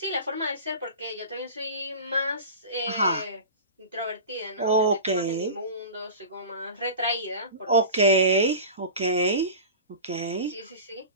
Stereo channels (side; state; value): both; inverted; correlation -0.33